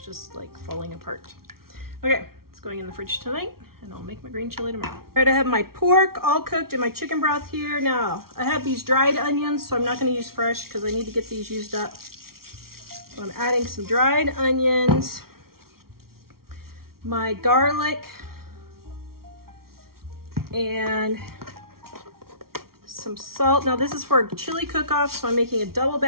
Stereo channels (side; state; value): left; late; 0.94 ms